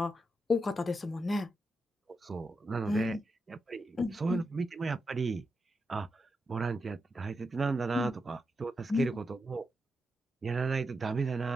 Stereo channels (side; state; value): both; normal; correlation 0.86